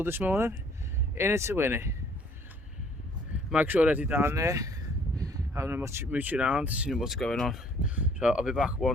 this morning. In it to win it. Mike's already down there, having a mooch around, seeing what's going on. So I'll be back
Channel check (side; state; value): both; normal; correlation 0.60